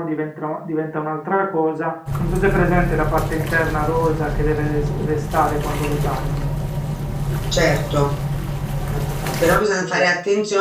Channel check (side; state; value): both; identical; correlation 1.00